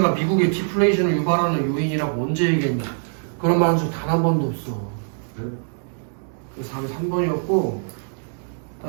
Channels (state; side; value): silent; left; digital silence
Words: 미국의 디플레이션을 유발하는 요인이라고 언제 얘기했냐? 그런 말한 적 단 한 번도 없어. 그래서 답이 3번이었고